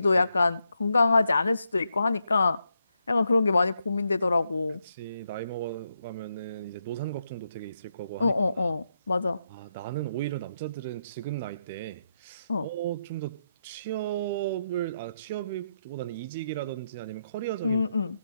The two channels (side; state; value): both; inverted; correlation -0.82